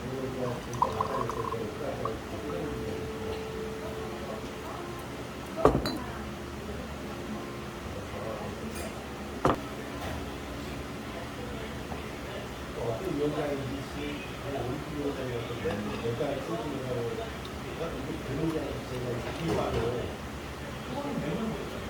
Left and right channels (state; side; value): identical; both; correlation 1.00